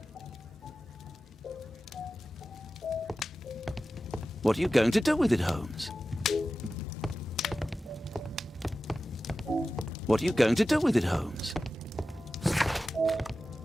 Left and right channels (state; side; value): normal; both; correlation 0.94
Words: What are you going to do with it, Holmes? What are you going to do with it, Holmes?